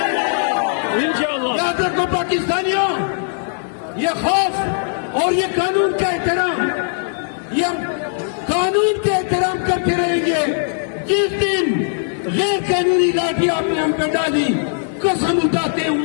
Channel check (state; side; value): silent; right; digital silence